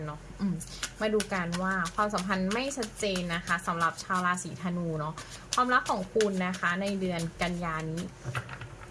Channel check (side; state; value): both; identical; correlation 1.00